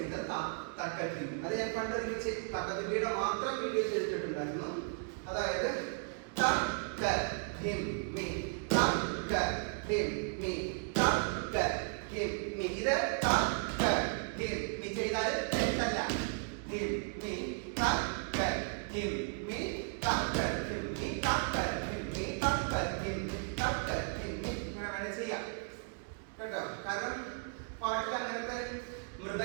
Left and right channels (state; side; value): silent; left; 54 dB below the other